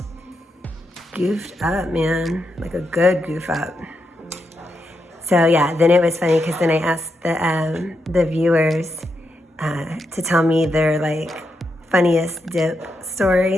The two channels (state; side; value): normal; both; correlation 0.84